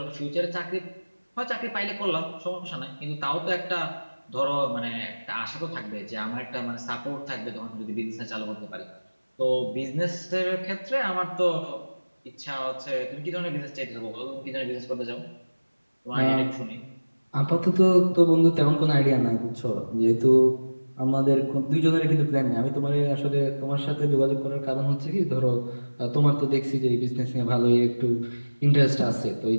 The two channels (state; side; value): inverted; both; correlation -1.00